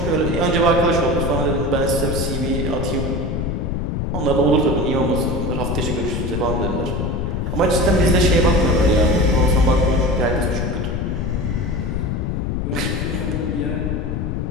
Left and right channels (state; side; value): noise; left; rumble, 1 dB below the sound